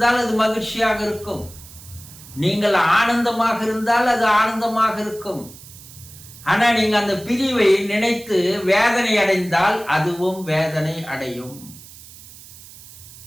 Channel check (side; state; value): right; noise; hiss, 19 dB below the sound